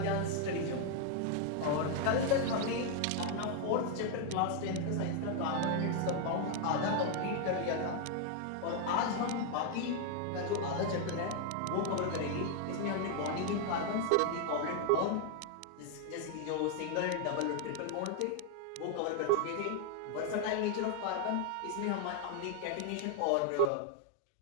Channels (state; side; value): different; both; correlation 0.00